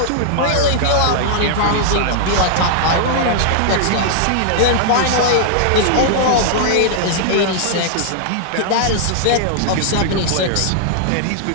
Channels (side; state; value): both; different; correlation -0.01